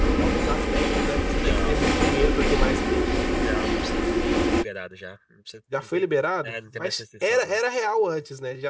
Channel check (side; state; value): both; identical; correlation 1.00